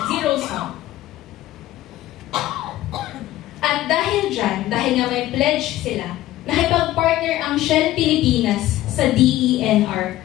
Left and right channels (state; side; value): quieter; right; 15.2 dB